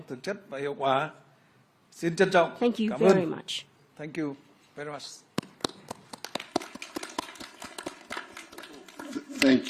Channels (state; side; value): identical; both; correlation 1.00